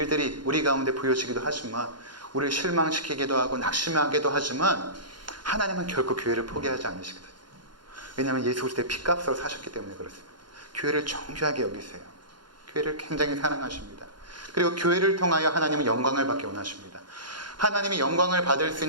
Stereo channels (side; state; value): left; late; 0.71 ms